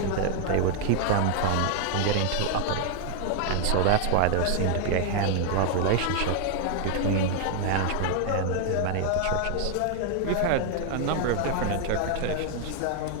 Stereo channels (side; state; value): both; different; correlation 0.00